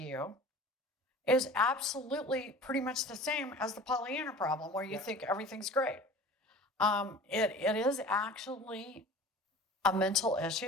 is absolutely pretty much the same as the Pollyanna problem, where you think everything's great. It is actually a mental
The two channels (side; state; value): both; normal; correlation 0.41